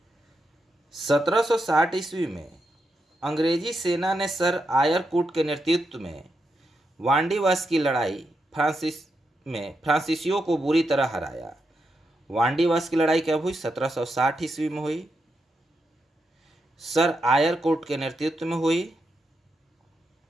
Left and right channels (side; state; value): both; normal; correlation 0.84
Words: 1760 ईस्वी में अंग्रेजी सेना ने सर आयरकुट के नेतृत्व में वांडीवास की लड़ाई फ्रांसीसियों को बुरी तरह हराया। वांडीवास की लड़ाई कब हुई? 1760 ईस्वी में हुई। सर आयरकुट के नेतृत्व में हुई,